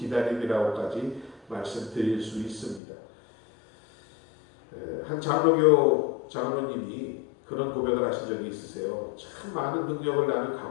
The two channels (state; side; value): drops out; right; at 2.8 s